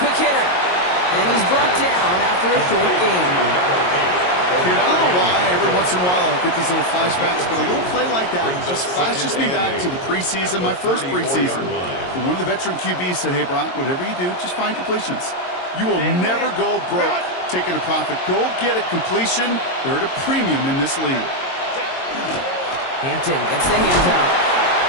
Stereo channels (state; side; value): late; right; 22 ms